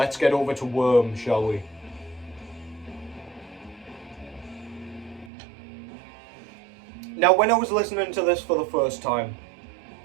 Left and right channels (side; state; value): left; drops out; at 5.3 s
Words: get over to Worm, shall we? Now, when I was listening to this for the first time,